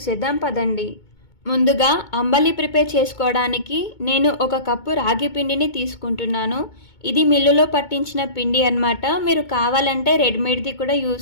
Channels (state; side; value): late; right; 2.2 ms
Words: పదండి. ముందుగా అంబలి ప్రిపేర్ చేసుకోవడానికి నేను 1 కప్పు రాగి పిండిని తీసుకుంటున్నాను. ఇది మిల్లులో పట్టించిన పిండి అన్నమాట. మీరు కావాలంటే రెడీమేడ్ది కూడా